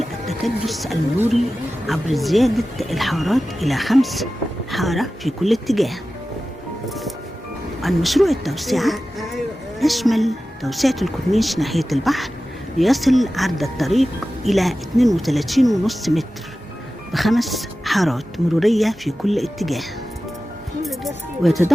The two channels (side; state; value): both; normal; correlation 0.95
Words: التكدس المروري عبر زيادة الحارات إلى 5 حارة في كل اتجاه. عن مشروع التوسعة يشمل توسعة الكورنيش ناحية البحر ليصل عرض الطريق إلى 32.5 متر ب5 حارات مرورية في كل اتجاه.